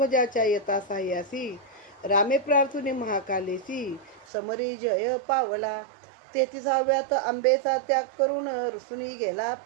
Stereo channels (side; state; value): left; drops out; at 4.2 s